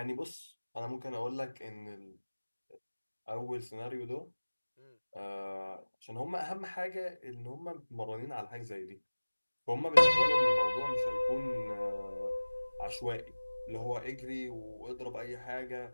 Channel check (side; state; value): both; inverted; correlation -1.00